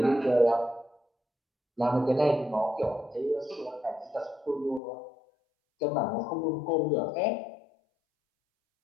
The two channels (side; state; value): right; drops out; at 4.8 s